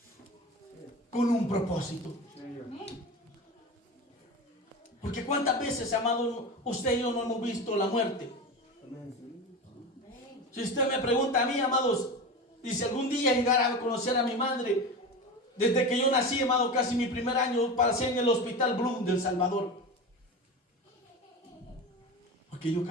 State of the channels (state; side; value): normal; both; correlation 0.26